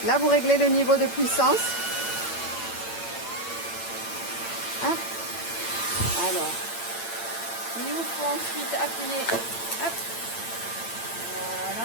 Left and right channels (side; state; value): right; late; 8.8 ms